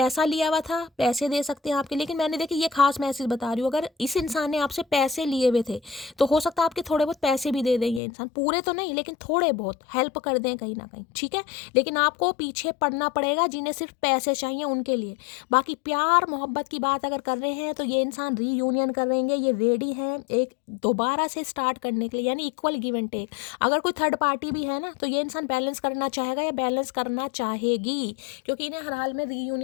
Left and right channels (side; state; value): right; drops out; at 8.0 s